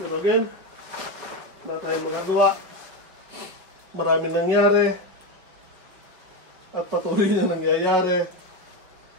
again, wala tayong magagawa. Maraming nangyari. At patuloy na nangyayari.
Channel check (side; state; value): left; late; 5.4 ms